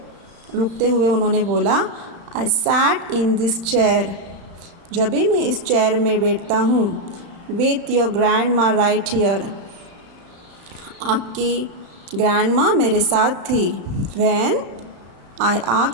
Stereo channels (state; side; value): late; left; 35 ms